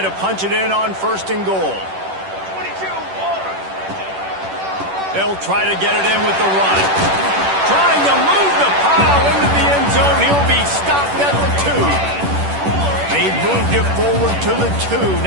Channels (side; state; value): left; late; 10 ms